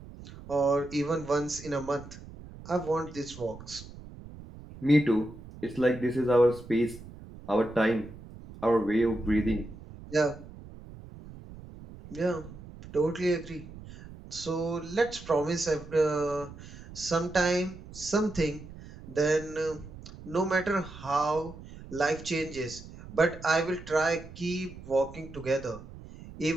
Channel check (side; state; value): right; noise; rumble, 16 dB below the sound